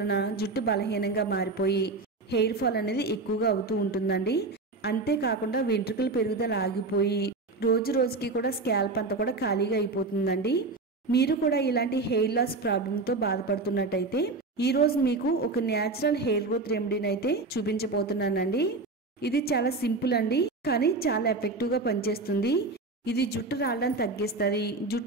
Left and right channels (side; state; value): left; quieter; 3.5 dB